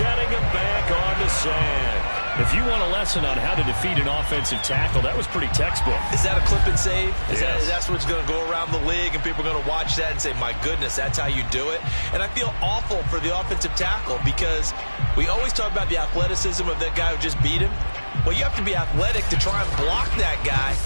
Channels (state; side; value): inverted; both; correlation -1.00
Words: him back on the sand. If you want a lesson on how to defeat an offensive tackle, that was pretty textbook. Is that a clip and save? Yes. That's what's going to go around the league, and people are going to watch that and say, my goodness, that's how you do it? And I feel awful for the offensive tackle because we always talk about the athleticism of that guy who just beat him. Well, you have to be athletic to try and block that guy.